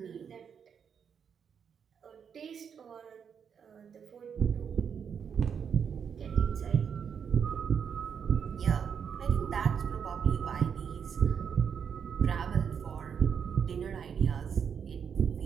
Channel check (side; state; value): left; quieter; 7.2 dB